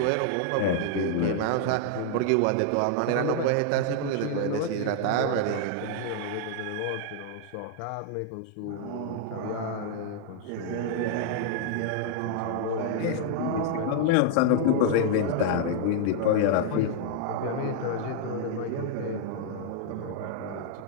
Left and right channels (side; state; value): both; different; correlation -0.01